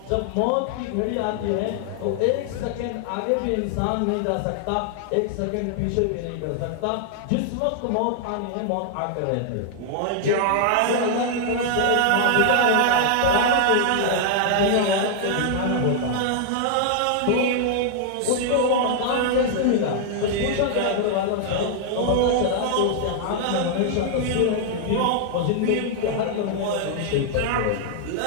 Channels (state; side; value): different; both; correlation -0.01